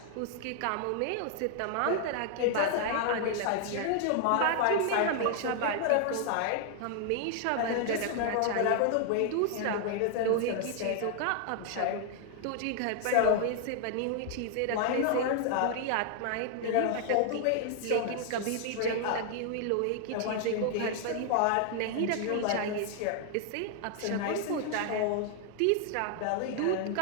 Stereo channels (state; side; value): different; both; correlation 0.00